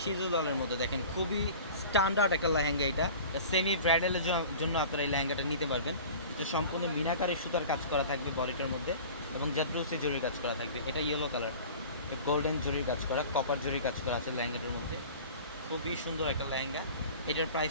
সিঁদুর লালের মধ্যে দেখেন, খুবই স্ট্যান্ডার্ড একটা লেহেঙ্গা। এটা সেমি ব্রাইডালের জন্য আপনারা এই লেহেঙ্গাটা নিতে পারবেন। এটা সম্পূর্ণ মিনাকারি সুতার কাজ করা থাকবে বডিটার মধ্যে, এবং জাদ্রুসি জরির কাজ করা থাকবে। এটা ইয়েলো কালার, গোল্ডেন জরির কাজ করা, কপার জরির কাজ করা আছে লেহেঙ্গাটার মধ্যে। খুবই সুন্দর একটা লেহেঙ্গা। এটার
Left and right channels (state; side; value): inverted; both; correlation -0.40